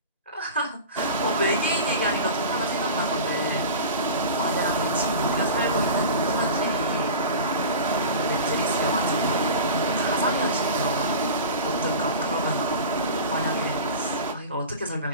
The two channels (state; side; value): inverted; both; correlation -0.33